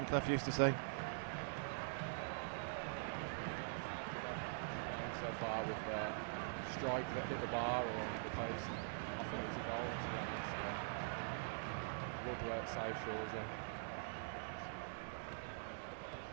Clough used to say. So far with the strike that hit the bar or the post, I thought it was a goal, to be honest. Good work, save Shawzi.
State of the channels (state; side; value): silent; left; digital silence